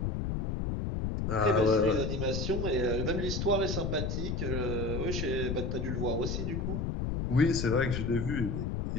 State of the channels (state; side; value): noise; left; rumble, 1 dB below the sound